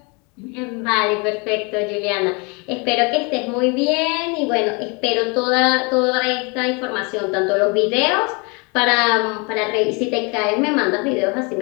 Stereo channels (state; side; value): quieter; right; 30.9 dB